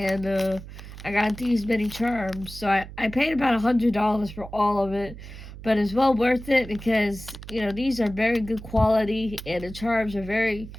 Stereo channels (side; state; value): right; noise; hum, 14 dB below the sound